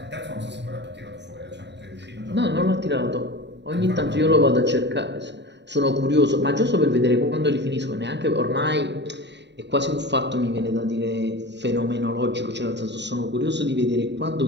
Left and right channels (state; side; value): late; left; 0.51 ms